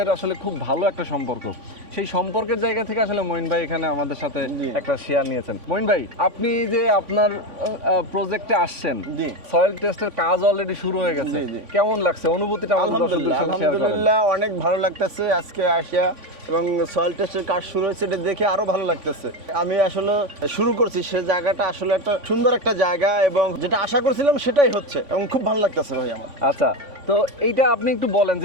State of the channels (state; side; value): late; left; 3.5 ms